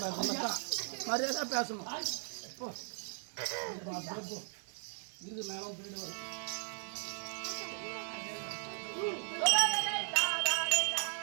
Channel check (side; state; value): left; silent; 53 dB below the other